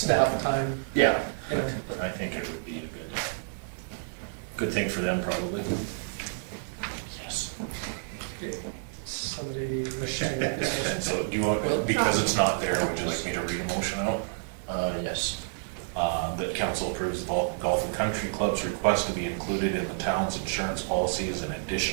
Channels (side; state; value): left; silent; digital silence